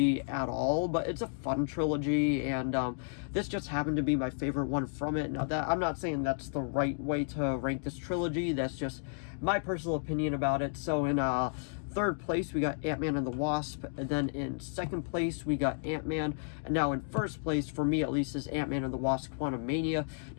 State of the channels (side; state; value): right; silent; digital silence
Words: at all, but it's a fun trilogy, and this just happened to be my favorite one from it. Now, that I'm not saying that's the right way to rank this trilogy, that's just my personal opinion about it. So in third place, we got Ant-Man and the Wasp, and then in second place, we got Ant-Man, and now in first place, for me at least, is Ant-Man and the Wasp Quantum Mania.